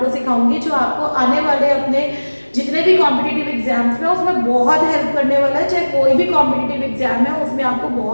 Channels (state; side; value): inverted; both; correlation -1.00